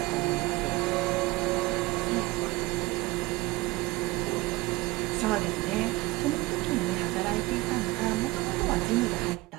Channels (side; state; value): left; quieter; 21.2 dB